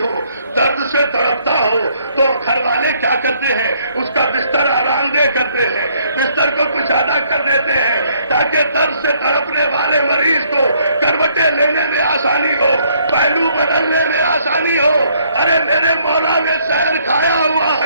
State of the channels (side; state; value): both; inverted; correlation -0.67